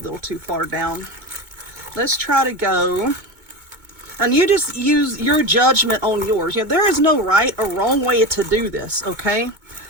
too far down. Let's try to go. And you just use your judgment on yours. You know, there is no right or wrong way to do this, okay?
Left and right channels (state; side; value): late; left; 2.2 ms